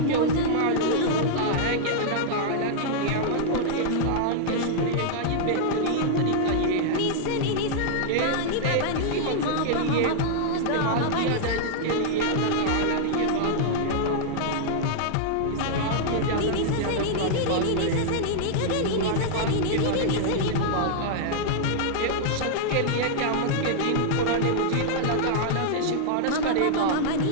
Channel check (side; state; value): both; different; correlation -0.01